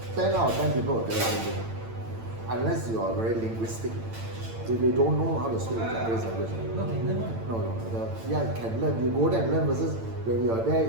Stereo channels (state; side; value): late; left; 8.9 ms